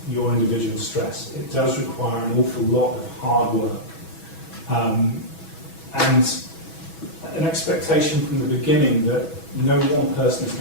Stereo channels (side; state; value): right; late; 6.1 ms